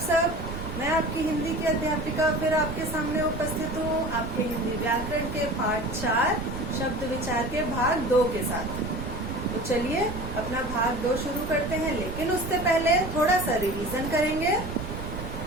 मैं आपकी हिंदी की अध्यापिका फिर आपके सामने उपस्थित हूँ आपके हिंदी व्याकरण के पाठ 4 शब्द विचार के भाग 2 के साथ। तो चलिए अपना भाग 2 शुरू करते हैं, लेकिन उससे पहले थोड़ा सा रिवीजन करेंगे।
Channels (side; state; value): right; noise; rumble, 7 dB below the sound